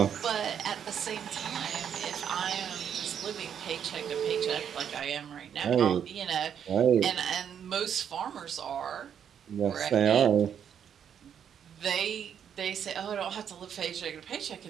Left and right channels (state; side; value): quieter; left; 8.5 dB